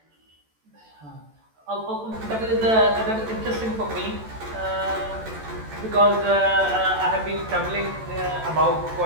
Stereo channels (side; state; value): left; late; 14 ms